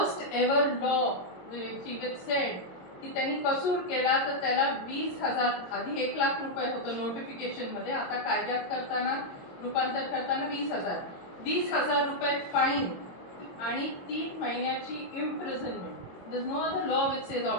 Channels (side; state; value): right; late; 22 ms